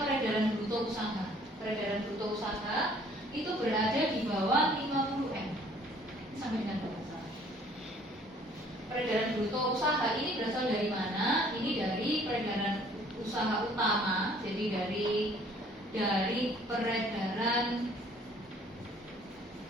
peredaran bruto usaha. Peredaran bruto usaha itu berada di bawah 50M. Sampai dengan berapa? Peredaran bruto usaha ini berasal dari mana? Ini dari peredaran usaha utama, jadi dari peredaran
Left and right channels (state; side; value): normal; both; correlation 0.57